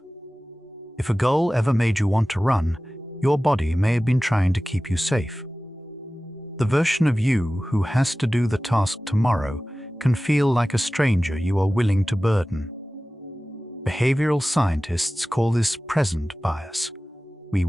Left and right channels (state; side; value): normal; both; correlation 0.96